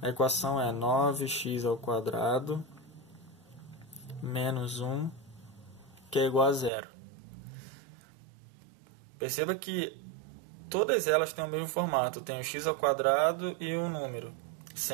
A equação é 9x ao quadrado menos 1, que é igual a zero. Perceba que todas elas têm o mesmo formato. Tem o x ao quadrado e um número,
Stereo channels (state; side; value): drops out; left; at 6.7 s